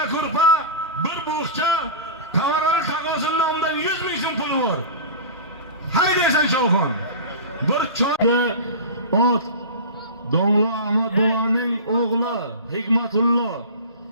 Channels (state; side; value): inverted; both; correlation -0.31